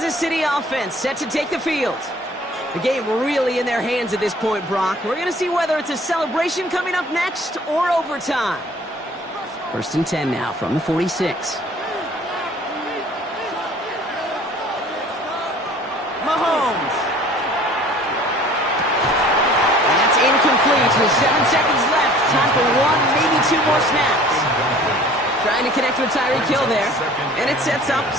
City offense set to take the field. The game really in their hands at this point, Brock. We're going to see whether it's a celebration coming up next or overtime. 1st and 10 now from the 46. Mahomes. And that's incomplete with 7 seconds left. Time for 1, maybe 2 more snaps. Trying to connect with Tyreek Hill there. And it sets up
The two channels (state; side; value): normal; both; correlation 0.51